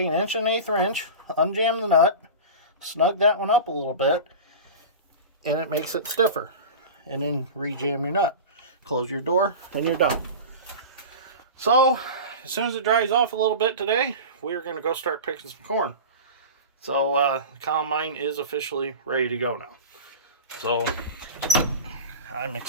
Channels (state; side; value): inverted; both; correlation -0.30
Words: 1 1/8 inch, unjam the nut, snug that one up a little bit, and it makes it stiffer. And then rejam your nut. Close your door, and you're done. So as soon as it dries off a little bit today, we're going to go start picking some corn. So the combine is officially ready to go now. So I'm